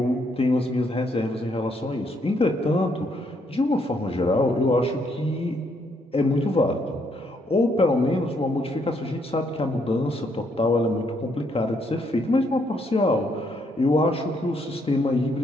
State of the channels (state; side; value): normal; both; correlation 0.73